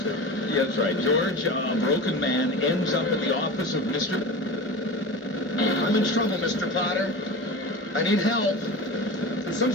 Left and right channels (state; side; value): normal; both; correlation 0.29